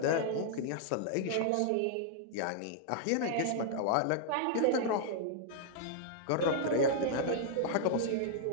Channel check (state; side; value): different; both; correlation -0.01